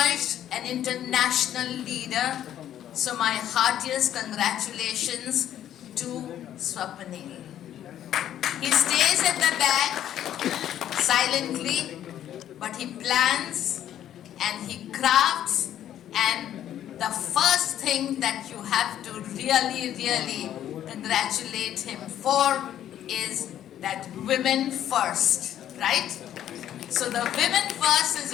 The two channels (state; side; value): quieter; right; 11.1 dB